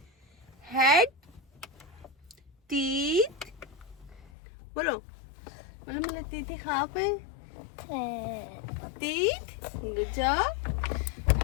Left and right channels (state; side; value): drops out; right; at 4.3 s